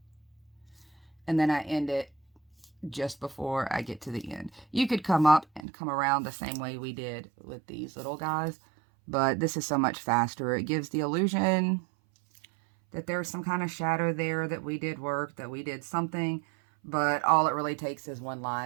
And then I end it just before I get to the end. You could come up and come around the same way we did with these little guys, but this is so much faster. It gives the illusion that there's some kind of shadow there, that we did work, that we did something, but all it really takes is one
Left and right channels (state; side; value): drops out; left; at 5.7 s